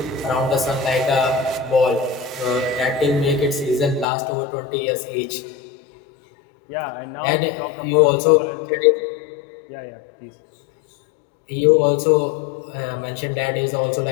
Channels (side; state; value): right; drops out; at 4.0 s